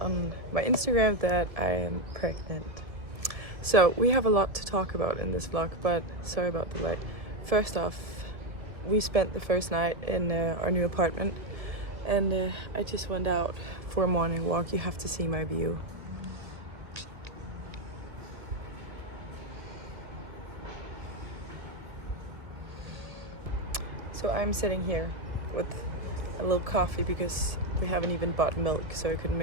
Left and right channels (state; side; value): late; left; 1.9 ms